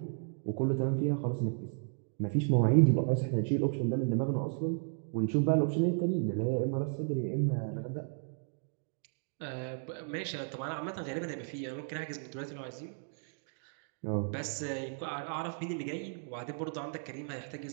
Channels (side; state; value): left; silent; 55 dB below the other